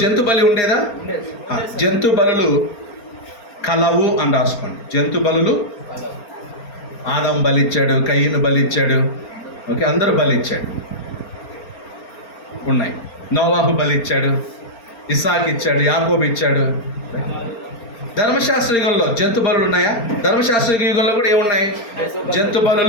జంతు బలి ఉండేదా? జంతు బలులు కలవు అని రాసుకోండి. జంతు బలులు ఆదాం బలిచ్చాడు, కయ్యను బలిచ్చాడు, ఓకే, అందరూ బలిచ్చాడు, ఉన్నాయి. నోవాహు బలిచ్చాడు, ఇస్సాకు ఇచ్చాడు, యాకోబు ఇచ్చాడు. ధర్మశాస్త్ర యుగంలో జంతు బలులు ఉన్నాయా? ధర్మశాస్త్ర యుగంలో కూడా ఏమున్నాయి? జంతు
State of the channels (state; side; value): late; right; 4.3 ms